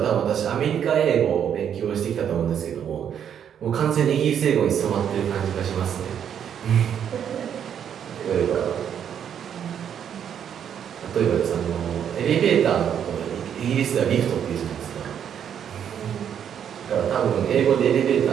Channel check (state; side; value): quieter; left; 8.8 dB